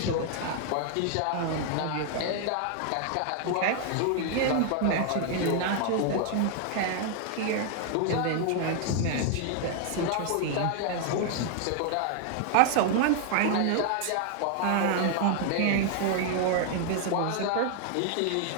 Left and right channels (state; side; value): different; both; correlation 0.00